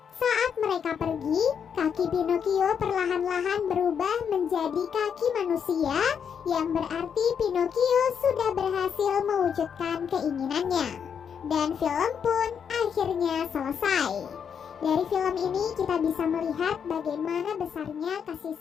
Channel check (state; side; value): quieter; right; 7.4 dB